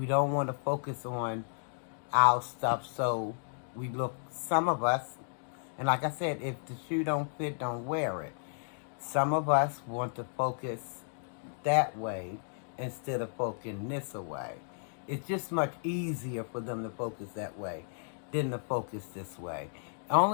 don't want to focus on our stuff, so we look. Some of us, and like I said, if the shoe don't fit, don't wear it. Some of us want to focus that way instead of focusing this way. It's just much easier for them to focus that way than to focus this way.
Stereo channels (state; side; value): silent; right; digital silence